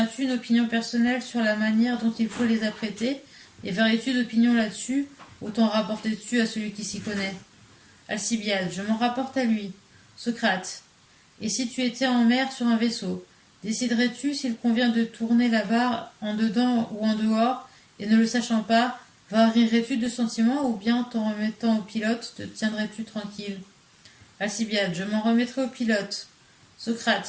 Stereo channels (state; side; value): identical; both; correlation 1.00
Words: as-tu une opinion personnelle sur la manière dont il faut les apprêter, et varies-tu d'opinion là-dessus, ou t'en rapportes-tu à celui qui s'y connaît? Alcibiade. Je m'en rapporte à lui. Socrate. Et si tu étais en mer sur un vaisseau, déciderais-tu s'il convient de tourner la barre en dedans ou en dehors, et ne le sachant pas, varierais-tu de sentiments, ou bien t'en remettant au pilote, te tiendrais-tu tranquille? Alcibiade. Je m'en remettrai au pilote.